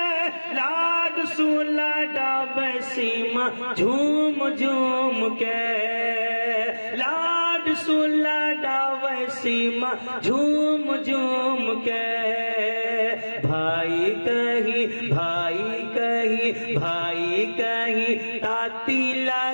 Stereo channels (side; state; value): both; inverted; correlation -1.00